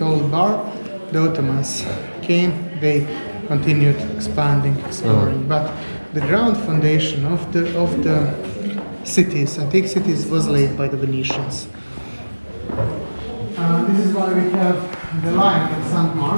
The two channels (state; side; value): inverted; both; correlation -1.00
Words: Old Bar, the Ottomans came, they continued expanding, exploring, but the ground foundation of the cities, antique cities, was laid by the Venetians. This is why we have the line of St.